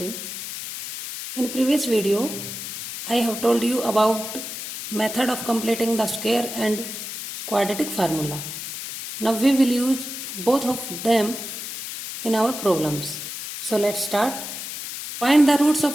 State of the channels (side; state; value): left; noise; hiss, 8 dB below the sound